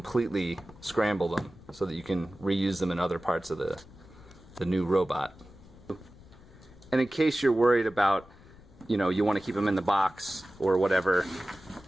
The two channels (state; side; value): noise; left; rumble, 22 dB below the sound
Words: scramble them so that you can reuse them in other parts of the new robot. And in case you're worried about, you know, you want to keep him in the box or whatever,